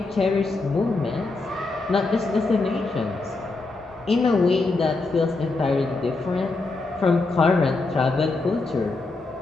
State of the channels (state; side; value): quieter; right; 3.5 dB